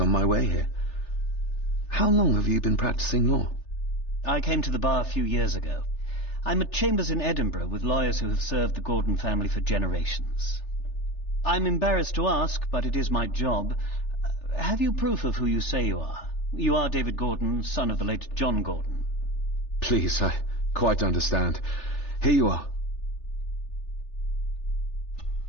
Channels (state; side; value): late; right; 3.4 ms